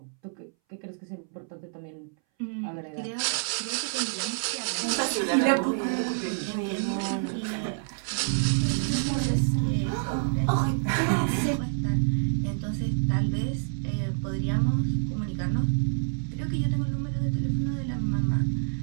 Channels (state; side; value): silent; left; 60 dB below the other